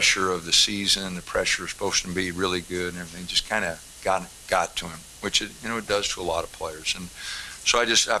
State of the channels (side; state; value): both; identical; correlation 1.00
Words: of the season, the pressure is supposed to be really good, and everything just kind of got to him, which it does to a lot of players. And so I